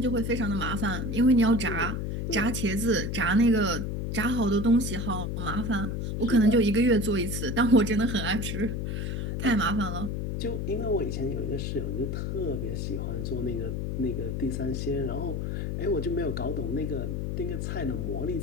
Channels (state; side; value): noise; left; hum, 2 dB below the sound